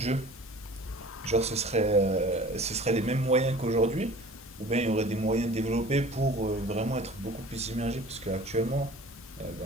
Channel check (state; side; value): normal; both; correlation 0.44